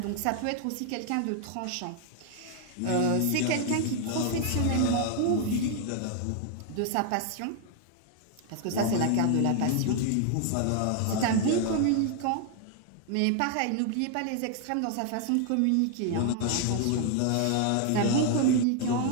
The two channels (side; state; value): both; different; correlation 0.00